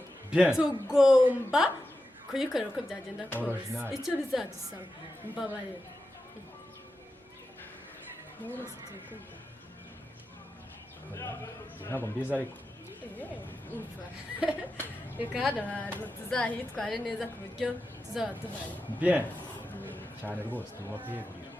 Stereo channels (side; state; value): both; normal; correlation 0.90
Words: bien tugomba kuyikorera uko byagenda kose Original. icyo bizadusaba mbabarira mwese turikumva ntabwo mbizi ariko umva reka hano hantu tuzahitware neza ku buryo tuzaba duhari bien cyane rwose tugomba kuyegurira